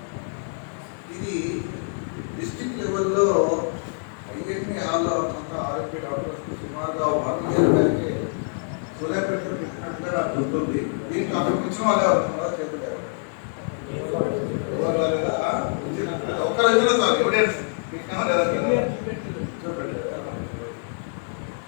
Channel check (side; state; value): right; silent; 62 dB below the other